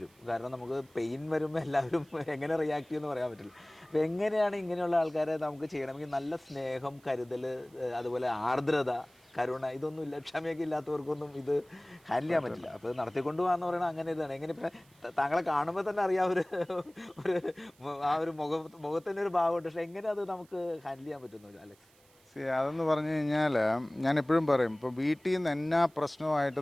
കാരണം നമുക്ക് പെയിൻ വരുമ്പോൾ എല്ലാവരും എങ്ങനെ റിയാക്ട് ചെയ്യുമെന്ന് പറയാൻ പറ്റില്ല. അപ്പോൾ എങ്ങനെയാണ് ഇങ്ങനെയുള്ള ആൾക്കാരെ നമുക്ക് ചെയ്യണമെങ്കിൽ നല്ല സ്നേഹം, കരുതൽ, അതുപോലെ ആർദ്രത, കരുണ, ഇതൊന്നും ഇല്ല. ക്ഷമയൊക്കെ ഇല്ലാത്തവർക്കൊന്നും ഇത് ഹാൻഡിൽ ചെയ്യാൻ പറ്റില്ല. അപ്പോൾ ഇത് നടത്തിക്കൊണ്ട് പോകാന്ന് പറയുന്നത് അങ്ങനെ ഇതാണ്. എങ്ങനെ ഇപ്പം താങ്കളെ കാണുമ്പോൾ തന്നെ അറിയാം ഒരു ഒരു ആ ഒരു മുഖത്തിൻ്റെ ഒരു ഭാവമുണ്ട്. പക്ഷേ എങ്ങനെ അത് നമുക്ക് ഹാൻഡിൽ ചെയ്യാൻ പറ്റുന്നു അലക്സ്? അതെന്ന് പറഞ്ഞു കഴിഞ്ഞാൽ ഞാൻ എപ്പോഴും പറയും, ഇപ്പോൾ വീട്ടിൽ നിന്ന് എന്നാ പ്രശ്നമായിട്ട്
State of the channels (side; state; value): right; noise; hiss, 30 dB below the sound